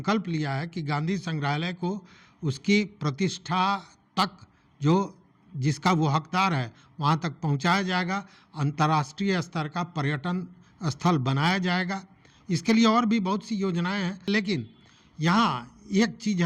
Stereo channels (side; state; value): both; identical; correlation 1.00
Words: लिया है कि गांधी संग्रहालय को उसकी प्रतिष्ठा तक, जो जिसका वो हकदार है, वहाँ तक पहुँचाया जाएगा, अंतर्राष्ट्रीय स्तर का पर्यटन स्थल बनाया जाएगा। इसके लिए और भी बहुत सी योजनाएं हैं, लेकिन यहाँ एक चीज़